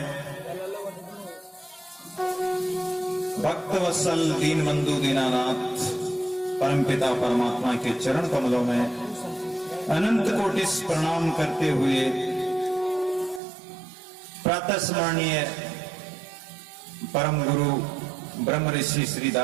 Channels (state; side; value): drops out; left; at 13.4 s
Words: भक्त वत्सल दीन बंधु दीनानाथ परमपिता परमात्मा के चरण कमलों में अनंत कोटि प्रणाम करते हुए प्रातः स्मरणीय परम गुरु ब्रह्म ऋषि श्री